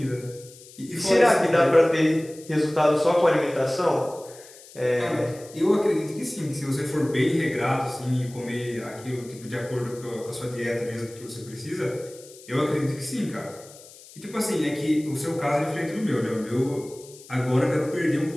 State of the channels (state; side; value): noise; left; hiss, 20 dB below the sound